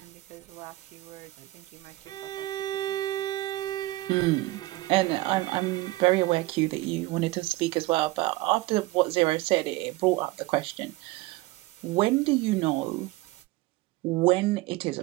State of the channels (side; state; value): left; quieter; 19.7 dB